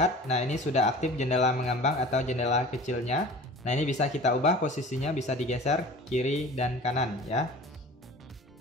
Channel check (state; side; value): normal; both; correlation 0.41